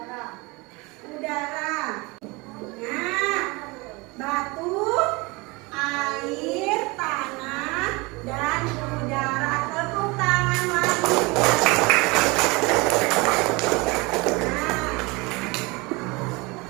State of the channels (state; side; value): quieter; left; 25.5 dB